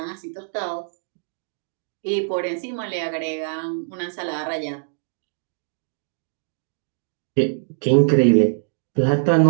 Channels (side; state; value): left; silent; digital silence